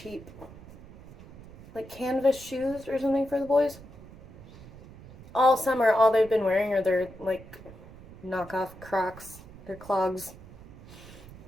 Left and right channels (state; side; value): noise; right; rumble, 18 dB below the sound